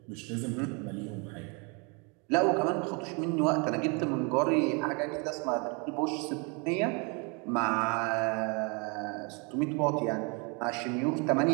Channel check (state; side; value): quieter; left; 32.7 dB